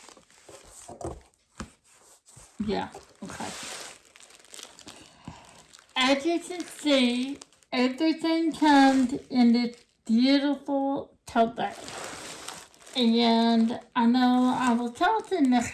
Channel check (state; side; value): identical; both; correlation 1.00